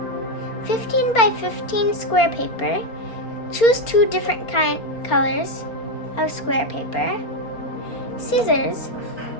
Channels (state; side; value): late; right; 4.3 ms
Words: 15 by 15 square paper. Choose 2 different colors of square paper. Scissors.